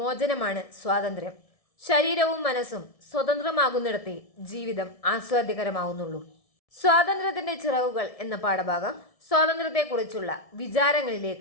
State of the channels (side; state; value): right; late; 1.7 ms